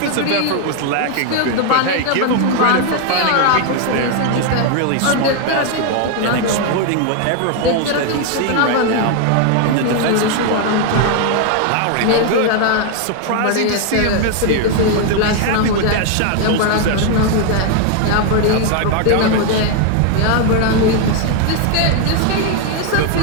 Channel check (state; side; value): different; both; correlation 0.01